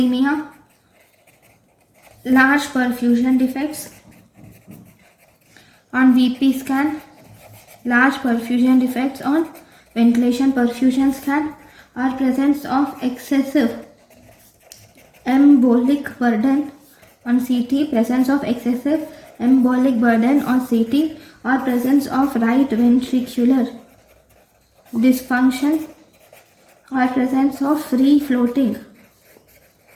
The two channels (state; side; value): identical; both; correlation 1.00